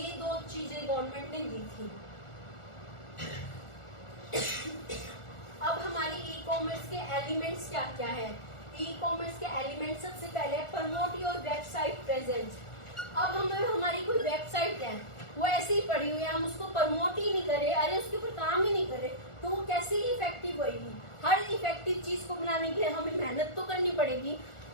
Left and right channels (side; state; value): right; late; 1.4 ms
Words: 2 चीजें गवर्नमेंट ने दी थी। अब हमारी ई कॉमर्स के एलिमेंट्स क्या क्या है, ई कॉमर्स के एलिमेंट सबसे पहले प्रमोट योर वेबसाइट प्रेजेंस। अब हमें हमारी कोई वेबसाइट है वो ऐसे ही पड़ी हुई है, हम उसको प्रमोट ही नहीं करे, अरे उसके ऊपर काम ही नहीं करे, तो वो कैसे ही इफेक्टिव होगी। हर इफेक्टिव चीज को बनाने के लिए हमें मेहनत तो करनी पड़ेगी,